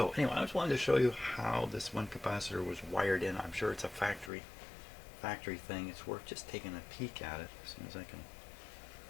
anyway, I just wanted to show you how this one capacitor was wired in. I'm sure it's a factory thing. It's worth just taking a peek at it as soon as I can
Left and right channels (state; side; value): drops out; right; at 4.3 s